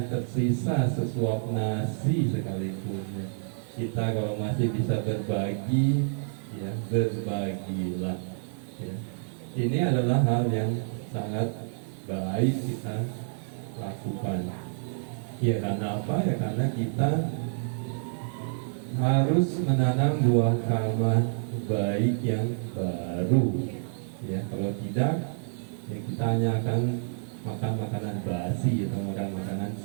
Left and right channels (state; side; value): silent; left; 59 dB below the other